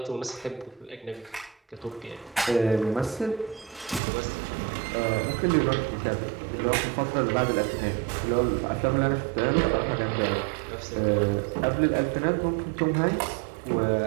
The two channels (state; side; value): drops out; left; at 4.0 s